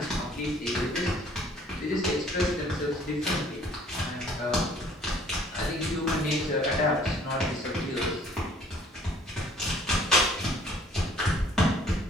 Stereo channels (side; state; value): both; normal; correlation 0.56